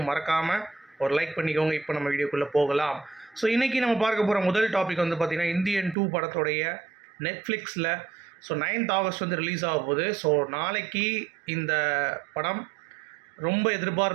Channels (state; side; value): drops out; left; at 6.0 s